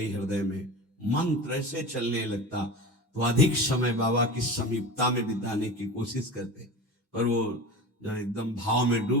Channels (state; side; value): normal; both; correlation 0.31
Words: हृदय में, मंत्र ऐसे चलने लगता। तो अधिक समय बाबा की समीपता में बिताने की कोशिश करते, पर वो जब एकदम भाव में